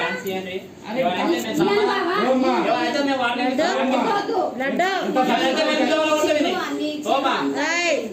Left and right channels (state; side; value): identical; both; correlation 1.00